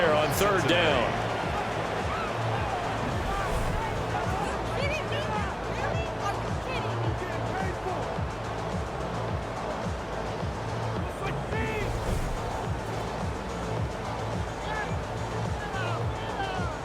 on third down.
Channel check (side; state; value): both; identical; correlation 1.00